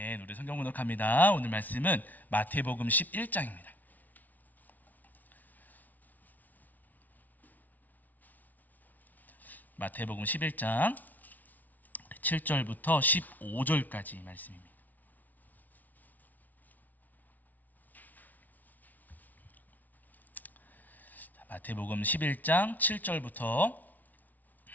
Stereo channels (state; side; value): late; right; 0.078 ms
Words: 우리 성경 문독합니다. 오늘 말씀은 마태복음 11장입니다. 마태복음 11장 7절부터 15절까지 말씀입니다. 마태복음 11장 7절부터